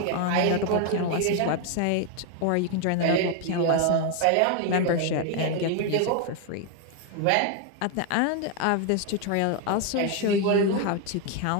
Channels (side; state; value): both; different; correlation 0.01